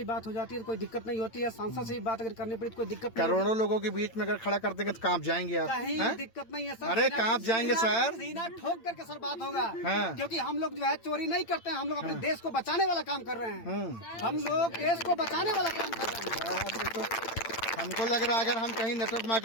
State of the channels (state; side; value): late; right; 8.8 ms